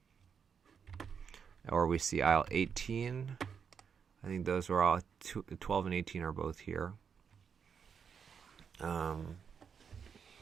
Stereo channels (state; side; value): quieter; left; 6.8 dB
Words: Or we see IL-18. I think those are all 12 and 18 are both here.